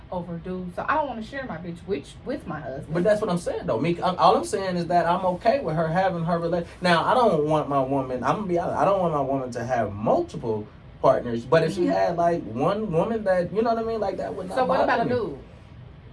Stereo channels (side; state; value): both; identical; correlation 1.00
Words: over dudes. So I don't want to share my bitch with my husband. But that's what I'm saying though. All I'm saying is that I'm okay with her having her relation. Now I don't want my woman. I'm gonna be honest. I don't want my woman to have multiple partners. But if she had like one woman that you know what I mean, like that would not. So what about a bother me. dude?